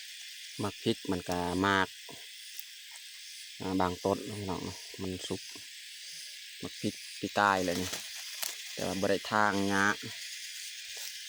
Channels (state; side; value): identical; both; correlation 1.00